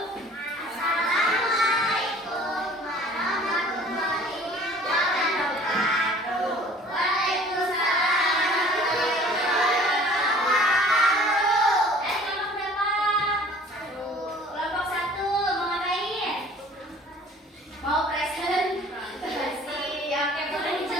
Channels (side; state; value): both; normal; correlation 0.50